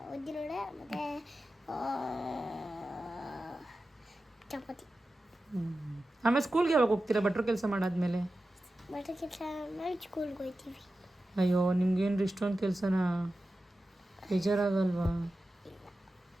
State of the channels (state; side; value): normal; both; correlation 0.93